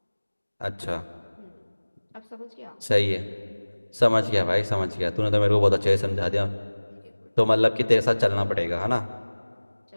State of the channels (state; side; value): inverted; both; correlation -1.00